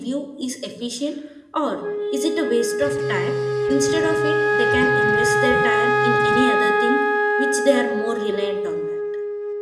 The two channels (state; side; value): identical; both; correlation 1.00